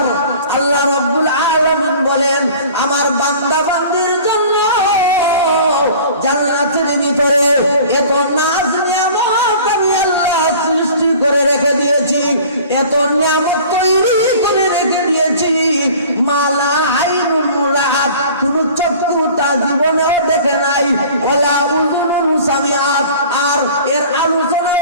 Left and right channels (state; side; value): inverted; both; correlation -0.45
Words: আল্লাহ রাব্বুল আলামিন বলেন, আমার বান্দা বান্দির জন্য জান্নাতের ভিতরে এত নাজ নিয়ামত আমি আল্লাহ সৃষ্টি করে রেখে দিয়েছি, এত নিয়ামত তৈরি করে রেখে দিয়েছি, মালা আইনুন রাআত, কোন চক্ষু তা জীবনেও দেখে নাই, ওয়ালা উযুনুন সামিআত, আর এর আলোচনা